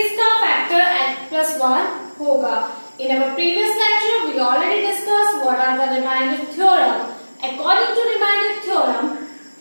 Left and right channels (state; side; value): inverted; both; correlation -1.00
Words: factor x plus 1 होगा। In our previous lecture we already discussed what are the remainder theorem. According to remainder theorem,